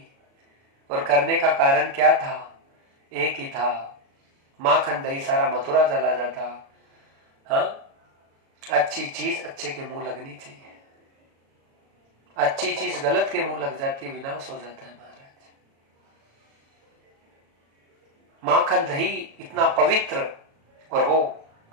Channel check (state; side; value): late; left; 36 ms